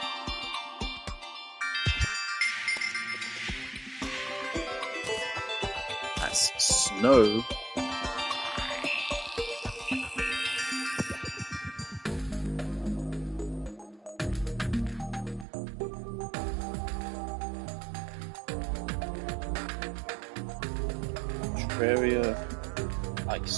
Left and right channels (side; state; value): left; drops out; at 15.5 s